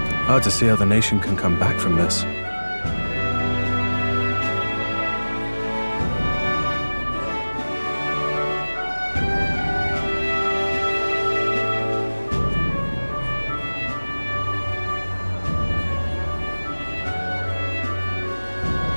Hard to see how the nation can come back from this.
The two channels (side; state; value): both; inverted; correlation -1.00